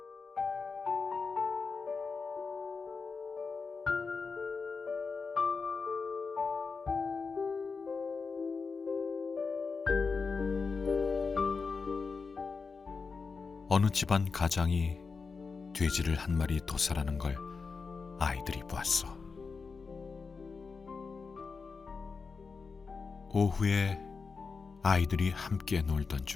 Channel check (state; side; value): quieter; right; 4.8 dB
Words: 어느 집안 가장이 돼지를 한 마리 도살하는 걸 아이들이 보았어. 오후에 아이들이 함께 놀던